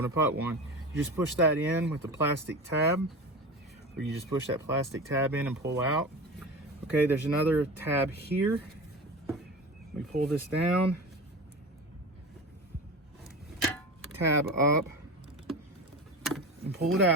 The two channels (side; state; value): both; normal; correlation 0.30